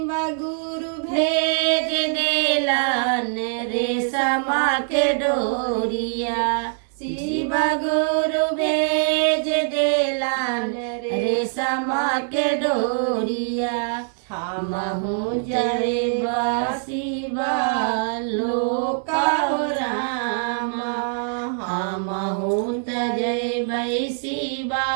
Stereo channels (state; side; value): silent; left; 63 dB below the other